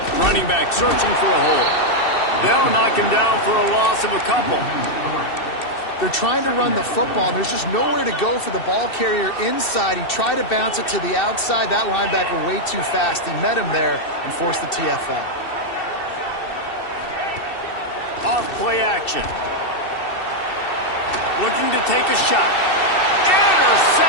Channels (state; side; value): late; right; 2.7 ms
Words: Running back searching for a hole. They'll knock him down for a loss of a couple. They're trying to run the football, and there's just nowhere to go for the ball carrier inside. He tried to bounce it to the outside. That linebacker way too fast. He met him there and forced the TFL. Off play action. Looking to take a shot.